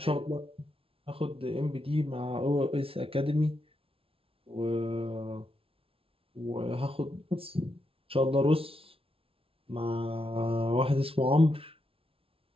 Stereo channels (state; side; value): late; left; 0.26 ms